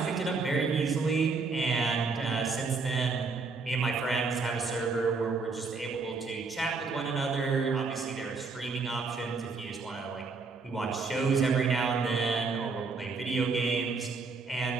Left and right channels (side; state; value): left; quieter; 4.4 dB